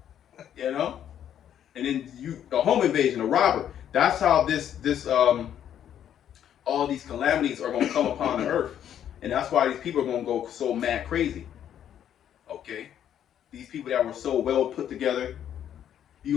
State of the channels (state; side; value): quieter; right; 10.0 dB